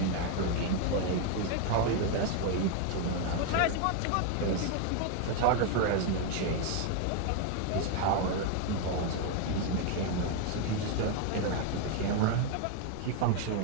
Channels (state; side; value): different; both; correlation 0.01